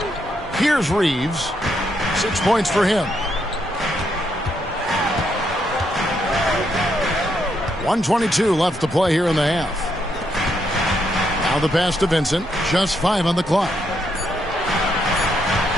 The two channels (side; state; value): both; normal; correlation 0.77